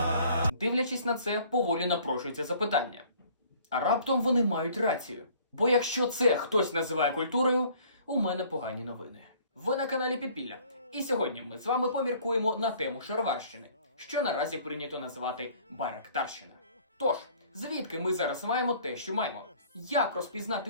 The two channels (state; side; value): inverted; both; correlation -0.55